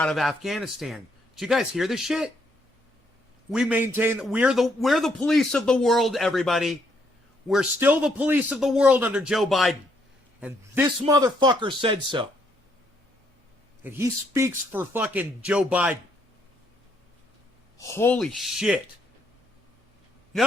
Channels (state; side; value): normal; both; correlation 0.72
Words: of Afghanistan. Did you guys hear this shit? We maintain. We're the police of the world, everybody. We're still the police of the world under Joe Biden. And this motherfucker said so. And he speaks for fucking Joe Biden. Holy shit.